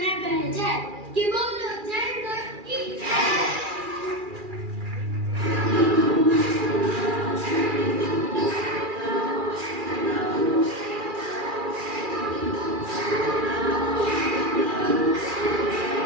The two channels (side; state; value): left; late; 2.4 ms